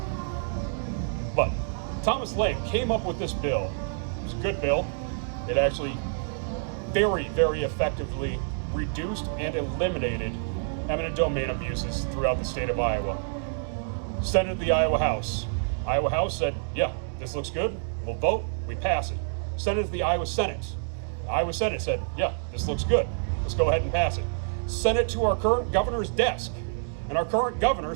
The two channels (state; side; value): silent; left; digital silence